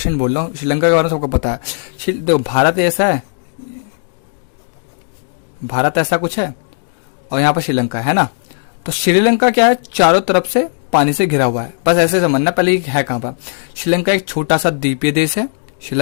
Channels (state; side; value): silent; right; digital silence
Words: बोल रहा हूँ, श्रीलंका के बारे में सबको पता है। देखो भारत ऐसा है, भारत ऐसा कुछ है और यहाँ पर श्रीलंका है ना। तो श्रीलंका क्या है, चारों तरफ से पानी से घिरा हुआ है, बस ऐसे समझना। पहले है कहाँ पर, श्रीलंका एक छोटा सा द्वीपीय देश है।